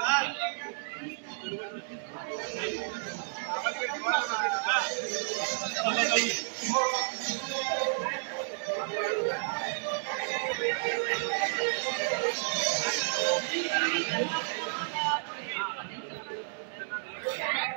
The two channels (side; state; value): left; silent; 57 dB below the other